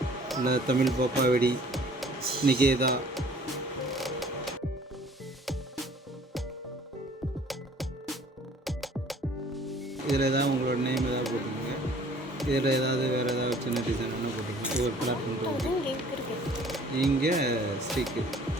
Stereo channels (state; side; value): normal; both; correlation 0.53